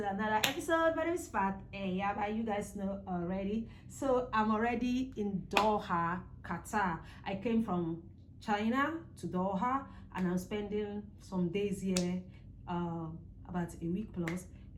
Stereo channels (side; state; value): both; identical; correlation 1.00